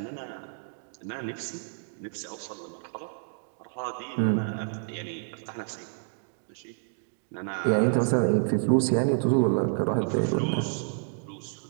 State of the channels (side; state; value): left; silent; digital silence